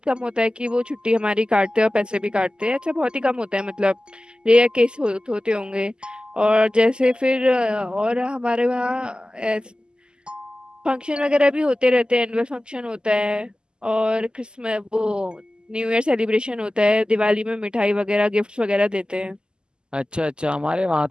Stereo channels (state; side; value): late; left; 0.047 ms